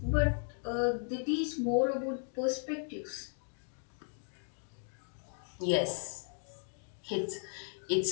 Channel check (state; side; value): silent; right; 54 dB below the other